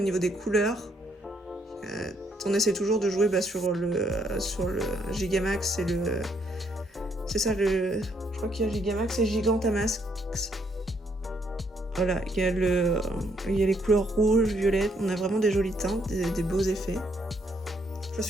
niveau des couleurs. On essaie toujours de jouer sur le Gigamax et le... C'est ça le... Je crois qu'il y a Gigamax et Gigantamax. Voilà, il y a les couleurs rouges, violettes. On a vraiment des jolies teintes, des beaux effets. Je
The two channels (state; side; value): normal; both; correlation 0.71